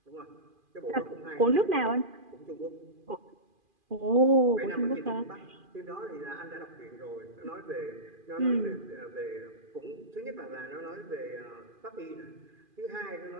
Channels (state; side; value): late; left; 2.5 ms